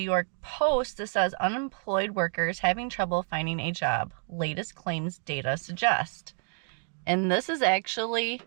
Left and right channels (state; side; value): quieter; left; 35.6 dB